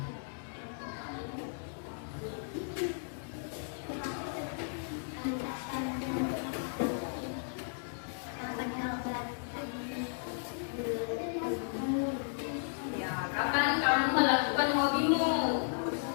Ya, kapan kamu melakukan hobimu?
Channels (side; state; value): right; silent; digital silence